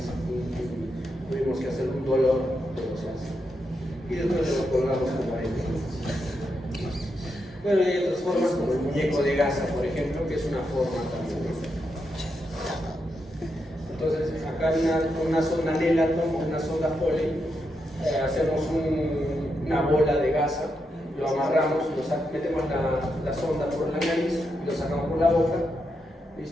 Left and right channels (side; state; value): both; normal; correlation 0.84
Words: Tuvimos que hacer un dolor, pero se hace. Y después lo colgamos con paréntesis. Bueno, y hay otras formas como el muñeco de gasa, por ejemplo, que es una forma también. Entonces, acá hay una sonda Nelaton, una sonda Foley, hacemos una bola de gasa, lo amarramos, metemos la sonda por la nariz, lo sacamos por la boca,